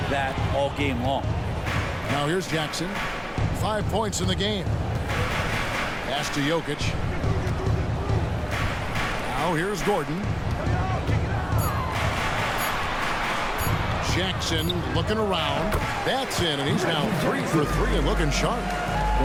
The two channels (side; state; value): both; identical; correlation 1.00